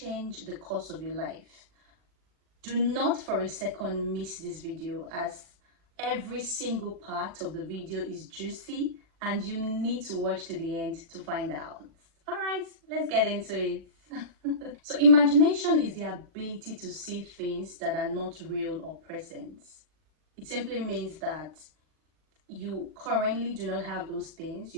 the course of your life. Do not for a second miss this video, as every single part of the video is juicy and you need to watch to the end to find out. All right, let's get into it. So imagination is the ability to see things that are not real or present. It simply means that you currently do not have those things.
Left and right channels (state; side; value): late; left; 39 ms